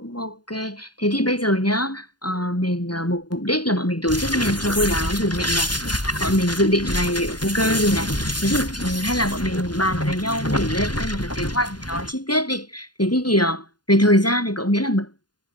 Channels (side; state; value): right; late; 0.70 ms